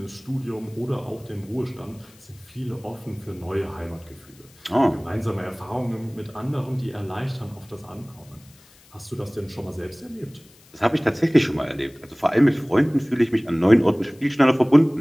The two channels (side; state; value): left; noise; hiss, 27 dB below the sound